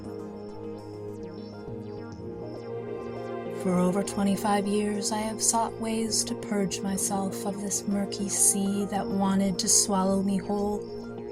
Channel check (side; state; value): both; identical; correlation 1.00